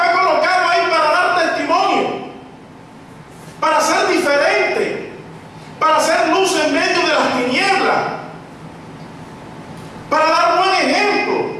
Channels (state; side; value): identical; both; correlation 1.00